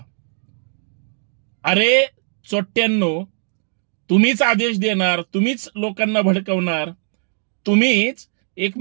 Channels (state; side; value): silent; left; digital silence